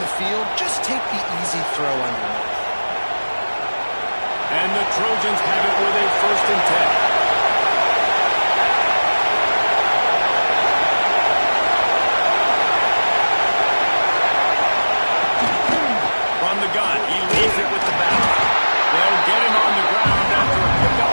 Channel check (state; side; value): inverted; both; correlation -1.00